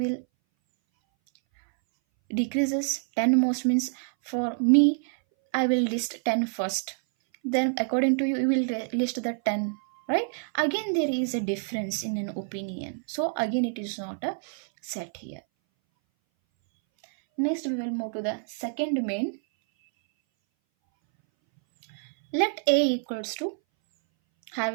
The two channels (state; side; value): silent; left; 59 dB below the other